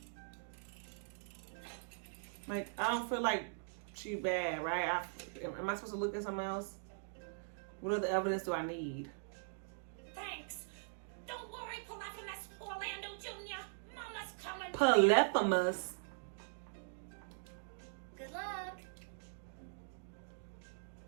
Like, I don't feel like she bad, right? Am I supposed to look at something else? What other evidence do I need? Thanks. Don't worry, pull out from that Orlando. Polyphemus. Good luck.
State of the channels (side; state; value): left; silent; digital silence